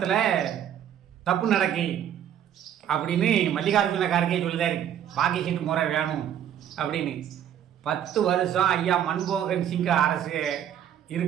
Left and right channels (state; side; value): quieter; left; 10.0 dB